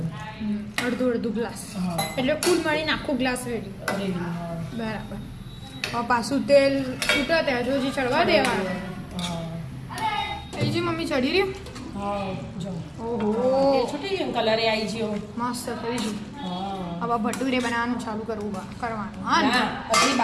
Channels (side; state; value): both; identical; correlation 1.00